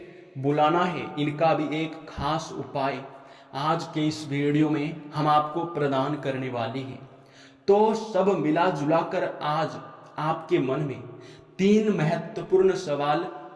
बुलाना है, इनका भी एक खास उपाय आज के इस वीडियो में हम आपको प्रदान करने वाले हैं। तो सब मिला जुला कर आज आपके मन में 3 महत्वपूर्ण सवाल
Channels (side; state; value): both; identical; correlation 1.00